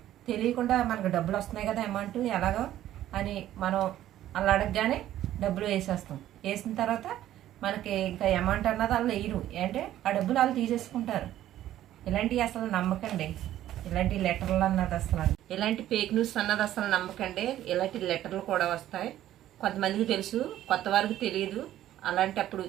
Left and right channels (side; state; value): left; quieter; 12.9 dB